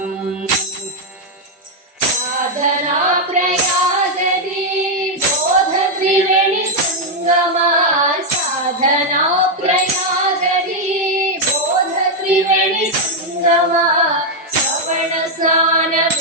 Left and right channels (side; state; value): both; normal; correlation 0.01